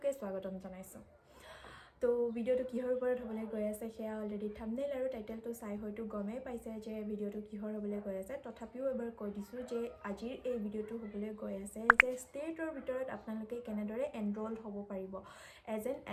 স্বাগতম জনাইছো তো ভিডিঅ'টো কিহৰ ওপৰত হ'বলৈ গৈ আছে সেয়া অলৰেডি থাম্বনেইল আৰু টাইটেলটো চাই হয়তো গমেই পাইছে যে ভিডিঅ'টো কিহৰ হ'বলৈ গৈ আছে তথাপিও এবাৰ কৈ দিছোঁ যে আজিৰ এই ভিডিঅ'টো হ'বলৈ গৈ আছে যে ষ্টেটৰ ভিতৰত আপোনালোকে কেনেদৰে এনৰোল হ'ব পাৰিব এজ এন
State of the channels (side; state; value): both; identical; correlation 1.00